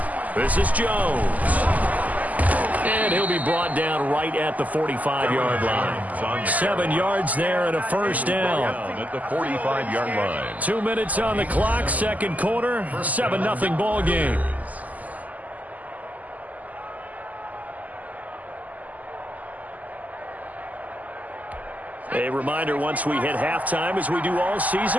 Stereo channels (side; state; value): left; late; 0.078 ms